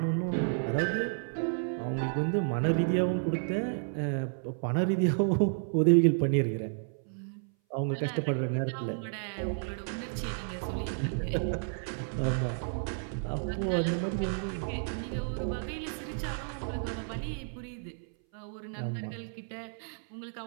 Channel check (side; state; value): left; silent; 57 dB below the other